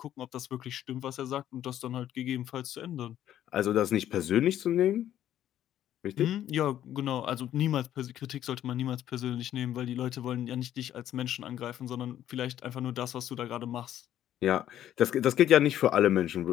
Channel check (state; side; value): quieter; right; 11.6 dB